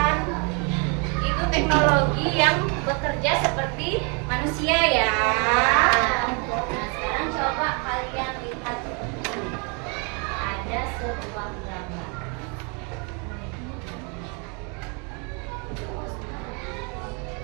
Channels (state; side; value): quieter; left; 34.5 dB